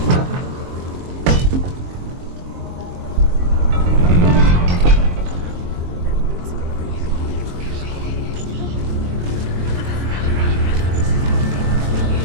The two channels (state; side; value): late; left; 23 ms